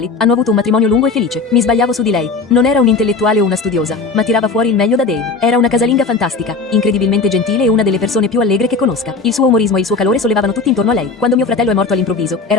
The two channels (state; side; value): quieter; right; 4.2 dB